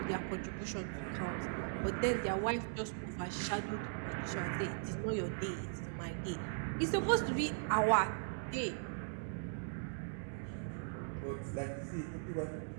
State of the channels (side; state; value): left; silent; digital silence